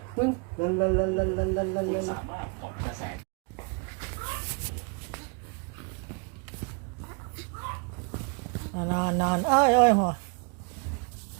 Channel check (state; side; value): quieter; left; 33.7 dB